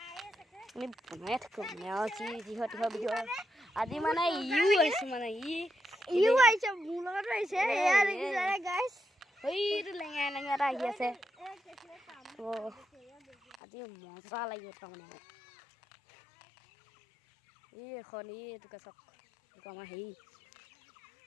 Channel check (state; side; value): drops out; right; at 13.6 s